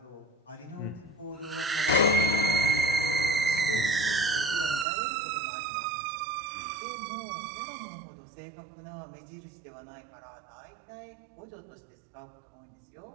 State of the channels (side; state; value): left; drops out; at 4.9 s